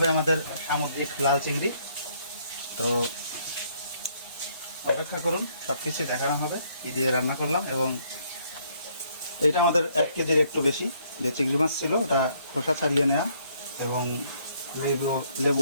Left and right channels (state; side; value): inverted; both; correlation -0.67